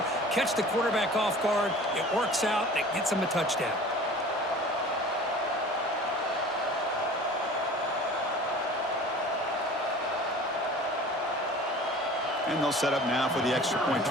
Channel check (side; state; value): both; normal; correlation 0.43